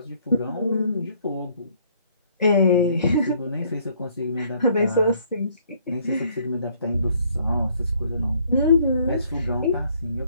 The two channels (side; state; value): both; inverted; correlation -0.64